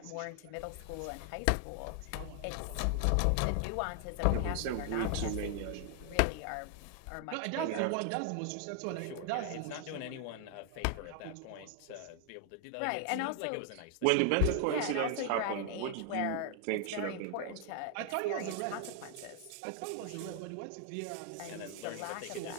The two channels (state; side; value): different; both; correlation 0.00